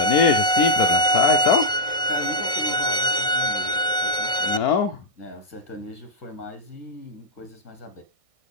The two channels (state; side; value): late; right; 1.6 ms